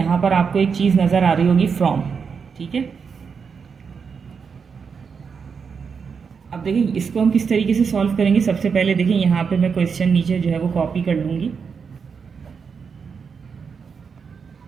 पर आपको एक चीज़ नज़र आ रही होगी फ्रॉम, ठीक है। अब देखिए इसको हम किस तरीके से सॉल्व करेंगे। सबसे पहले देखिए यहाँ पे मैं क्वेश्चन नीचे जो है वो कॉपी कर लूँगी।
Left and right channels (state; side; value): quieter; left; 6.0 dB